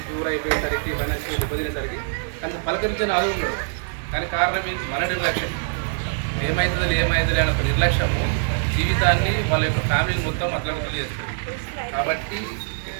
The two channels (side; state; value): left; silent; 60 dB below the other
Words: ప్యూర్ అయిపోయేసరికి ఫైనాన్షియల్ ఇబ్బందినేసరికి కానీ పలకరించని ఆలోచన ఉండదు. దానికి కారణం ఏంటి? మన నిర్లక్ష్యం. ఏమవుతుందని అనే ఒక నిర్లక్ష్యము జీవితాన్ని వాళ్ళ యొక్క ఫ్యామిలీని మొత్తం అట్లా చేస్తుంది. కాబట్టి